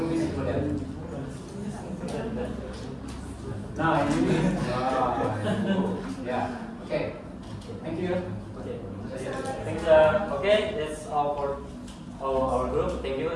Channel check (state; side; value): identical; both; correlation 1.00